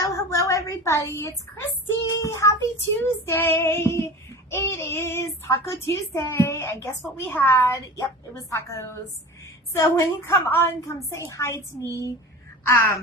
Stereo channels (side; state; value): both; normal; correlation 0.35